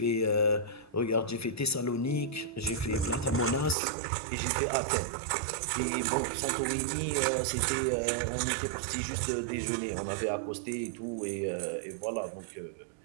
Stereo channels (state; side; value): drops out; left; at 3.8 s